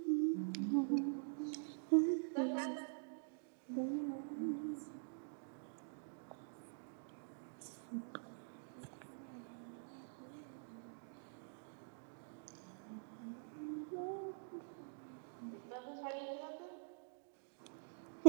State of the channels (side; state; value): left; silent; digital silence